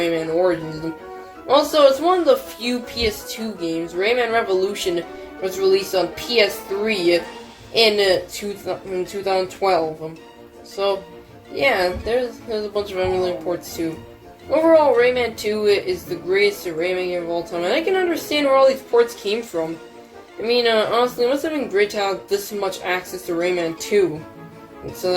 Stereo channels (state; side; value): identical; both; correlation 1.00